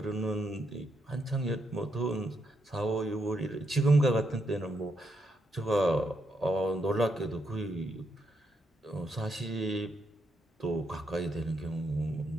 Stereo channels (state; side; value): normal; both; correlation 0.79